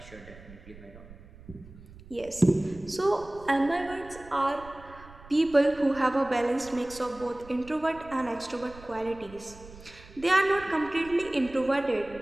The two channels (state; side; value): noise; right; rumble, 19 dB below the sound